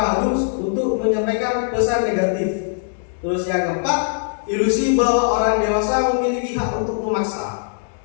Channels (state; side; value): silent; right; digital silence